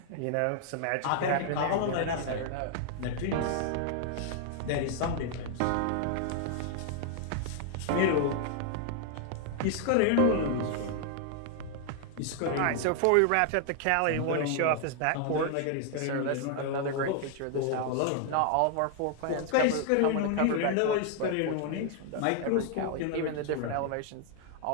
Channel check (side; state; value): both; different; correlation 0.00